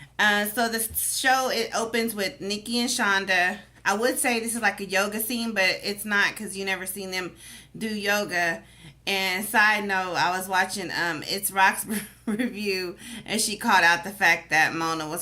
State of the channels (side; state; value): both; identical; correlation 1.00